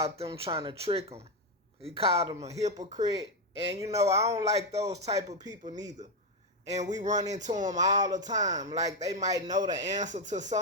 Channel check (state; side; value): normal; both; correlation 0.05